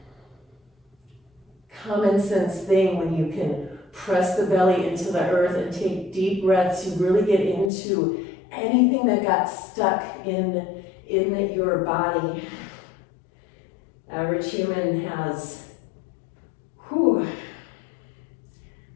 common sense thing when you can press the belly into the earth and take deep breaths. You really get into anything that got stuck in your body. Average human has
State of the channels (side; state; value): right; drops out; at 7.7 s